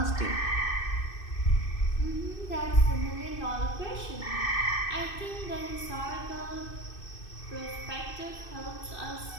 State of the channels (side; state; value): right; late; 2.6 ms